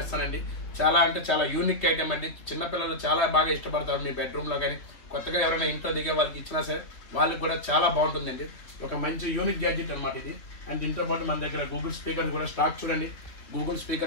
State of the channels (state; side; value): late; right; 2.9 ms